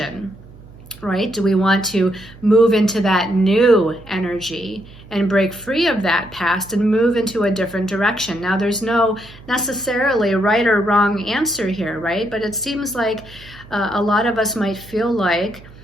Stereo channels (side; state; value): right; noise; hum, 20 dB below the sound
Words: right? Do we want to move into that new energy and break free of that past and move into a different direction? Now, there's no necessarily right or wrong answer here, right? But it seems like a lot of us might feel like